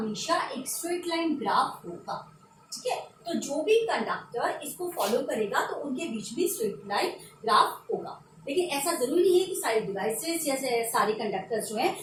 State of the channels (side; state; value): both; identical; correlation 1.00